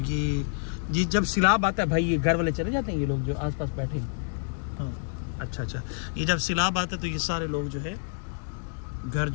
ये जब सैलाब आता है भाई, ये घर वाले चले जाते हैं, ये लोग जो आसपास बैठे हैं। हाँ अच्छा, ये जब सैलाब आता है तो ये सारे लोग जो है घर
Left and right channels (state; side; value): silent; right; digital silence